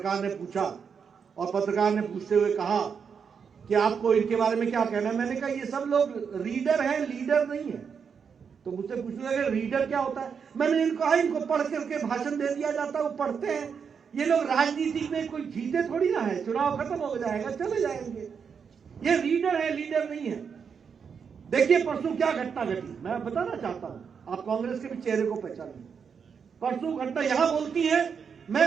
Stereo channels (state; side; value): quieter; left; 6.5 dB